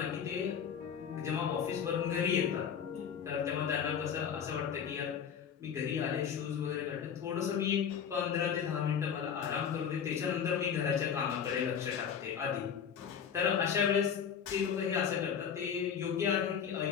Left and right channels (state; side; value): quieter; right; 7.7 dB